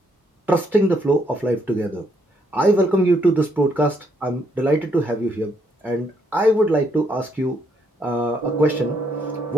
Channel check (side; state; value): both; normal; correlation 0.73